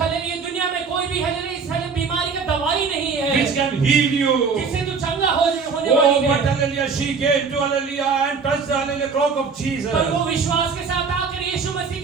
हले ये दुनिया में कोई भी हले इस हले बीमारी का दवाई नहीं है which can heal you. जिससे तू चंगा होने Oh, वाली but है। hallelujah, she came to hallelujah and touched the hallelujah cloak of Jesus. पर वो विश्वास के साथ आकर यीशु मसीह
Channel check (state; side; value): quieter; left; 5.3 dB